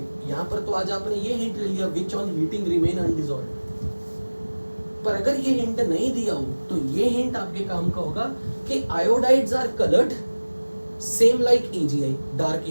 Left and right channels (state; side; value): inverted; both; correlation -1.00